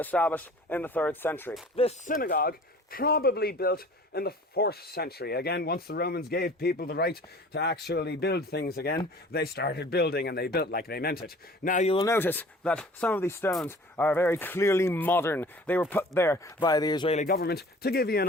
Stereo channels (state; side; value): normal; both; correlation 0.47